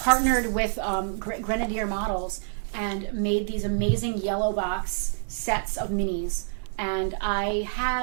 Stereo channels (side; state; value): left; silent; digital silence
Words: with Grenadier Models and made these amazing yellow box sets of minis. And I